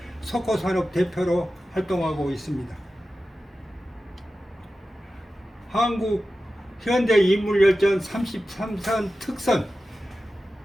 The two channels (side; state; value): both; normal; correlation 0.94